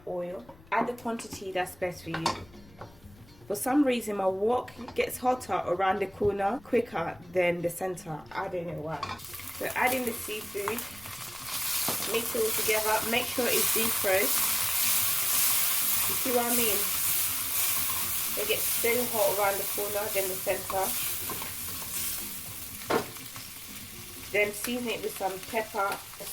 oil. Add the quantity that's best for you. For some reason my wok gets hotter around the corner quicker than the center. I don't know why. So add in the seafood. Mix it all together. Make sure it's defrosted. You see what I mean? It gets so hot around the corner than the center. Then season it with some pepper,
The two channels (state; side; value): noise; left; rumble, 24 dB below the sound